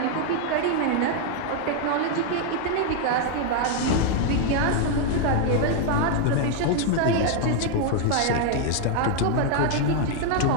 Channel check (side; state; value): both; different; correlation 0.00